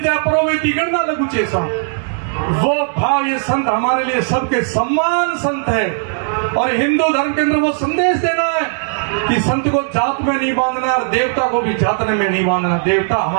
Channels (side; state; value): left; silent; digital silence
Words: परोवेती करना लगू चेसा। वो भाव ये संत हमारे लिए सबके सम्मान संत है। और हिंदू धर्म के अंदर वो संदेश देना है कि संत को जात में नहीं बांधना, देवता को भी जात में नहीं बांधना। देवता